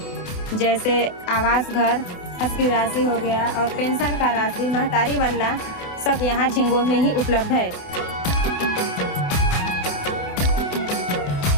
जैसे आवास घर, हज की राशि हो गया और पेंशन का राशि, महतारी बनना, सब यहाँ झिंगो में ही उपलब्ध है।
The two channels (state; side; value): late; right; 28 ms